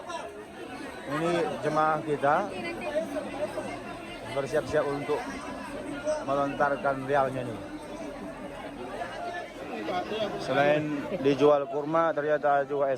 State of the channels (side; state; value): both; identical; correlation 1.00